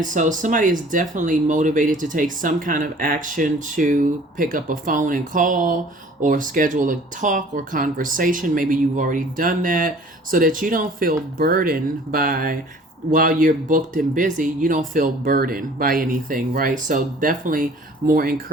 so somebody is definitely motivated to take some kind of action to pick up a phone and call or schedule a talk or conversation. Maybe you've already done that so that you don't feel burdened by, while you're booked and busy, you don't feel burdened by anything, right? So definitely more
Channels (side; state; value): both; normal; correlation 0.50